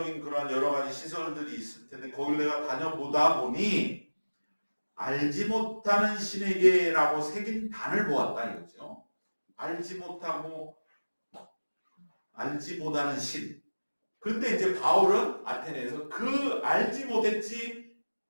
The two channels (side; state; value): both; inverted; correlation -1.00